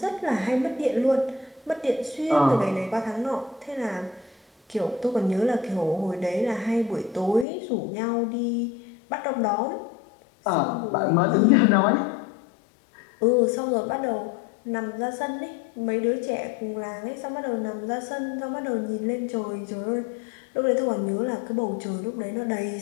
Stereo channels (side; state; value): right; drops out; at 7.5 s